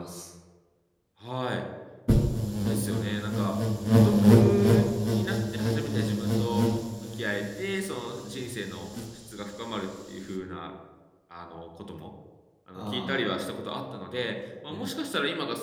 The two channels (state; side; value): identical; both; correlation 1.00